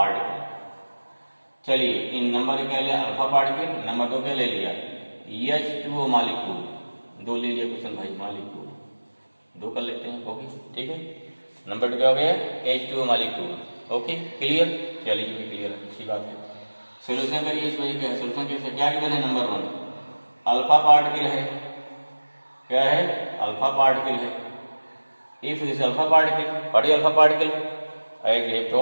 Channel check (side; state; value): both; inverted; correlation -1.00